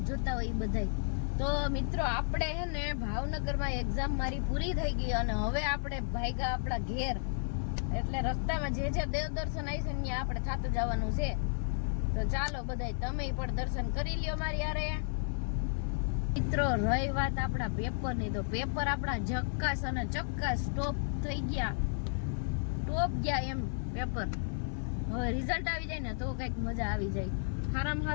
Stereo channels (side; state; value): right; silent; 56 dB below the other